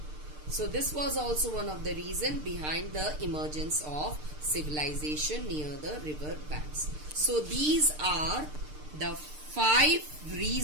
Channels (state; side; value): late; left; 6.6 ms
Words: So this was also one of the reasons behind the emergence of civilization near the river banks. So these are the 5